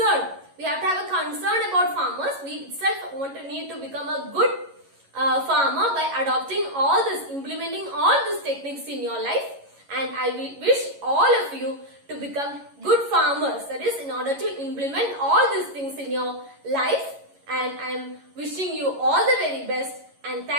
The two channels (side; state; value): left; late; 11 ms